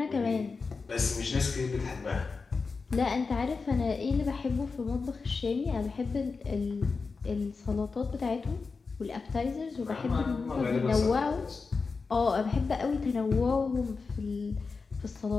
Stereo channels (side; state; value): right; quieter; 4.5 dB